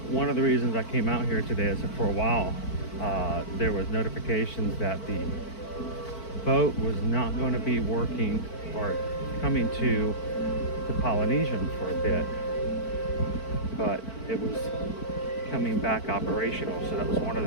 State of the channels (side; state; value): right; late; 4.5 ms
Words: of the reasons I came out here today is that for a while there was notifications that the boat was not going to be working or coming to the Polynesian for a bit, but it was coming back operational. So that was one of